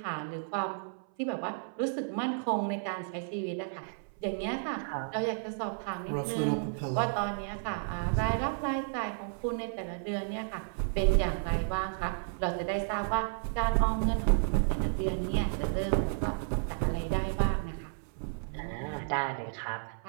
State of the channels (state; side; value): silent; left; 56 dB below the other